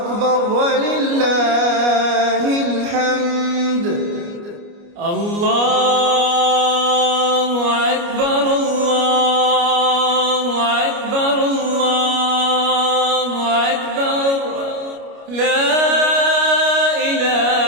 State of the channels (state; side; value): late; left; 29 ms